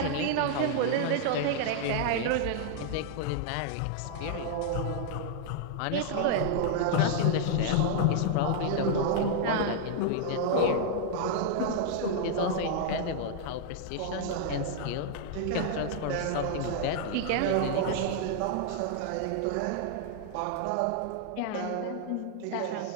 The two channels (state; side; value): different; both; correlation -0.01